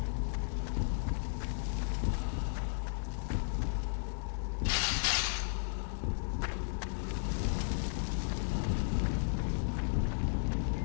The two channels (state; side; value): silent; right; digital silence